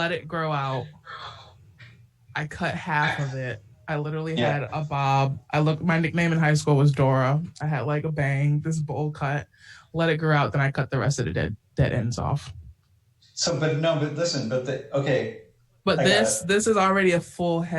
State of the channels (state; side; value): identical; both; correlation 1.00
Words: it grow out. I cut half of it. I literally had a bob. My nickname in high school was Dora. I had like a bang, this bowl cut, let it grow out, then I cut the rest of the dead ends off. So, but this is already a full